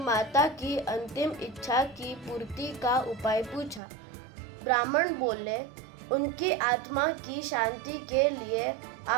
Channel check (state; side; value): drops out; left; at 3.8 s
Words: की अंतिम इच्छा की पूर्ति का उपाय पूछा। ब्राह्मण बोले, उनकी आत्मा की शांति के लिए